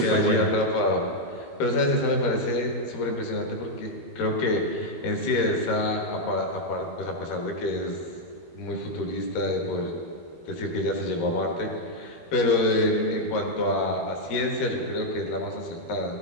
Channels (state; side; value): late; right; 13 ms